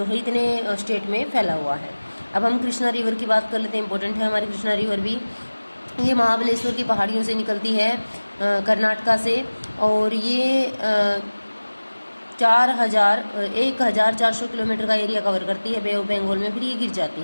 है इतने स्टेट में फैला हुआ है। अब हम कृष्णा रिवर की बात कर लेते हैं। इंपॉर्टेंट है हमारी कृष्णा रिवर भी। ये महाबलेश्वर की पहाड़ियों से निकलती है, कर्नाटका से, और ये 1400 किलोमीटर का एरिया कवर करती है बे ऑफ बंगाल में, फिर ये गिर जाती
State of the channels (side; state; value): both; inverted; correlation -1.00